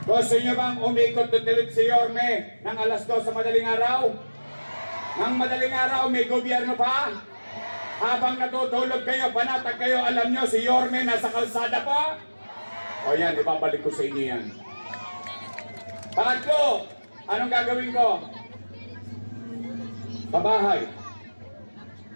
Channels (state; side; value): inverted; both; correlation -1.00